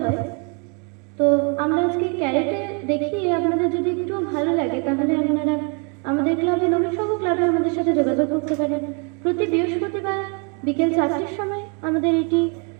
হয়। তো আমরা আজকে ক্যারেটে দেখিয়ে আপনাদের যদি একটু ভালো লাগে তাহলে আপনারা আমাদের ক্লাবে, নবীন সংঘ ক্লাবে আমাদের সাথে যোগাযোগ করতে পারেন। প্রতি বৃহস্পতিবার বিকেল 4টের সময় আমাদের এটি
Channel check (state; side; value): quieter; left; 36.1 dB